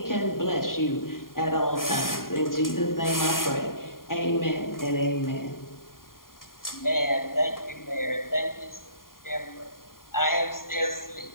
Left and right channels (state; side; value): late; right; 0.91 ms